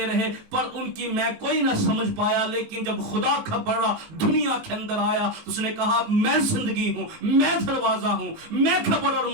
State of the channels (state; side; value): late; left; 19 ms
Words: رہے، پر ان کی میں کوئی نہ سمجھ پایا۔ لیکن جب خدا کا بڑا دنیا کے اندر آیا، اس نے کہا میں زندگی ہوں، میں دروازہ ہوں، میں قبر اور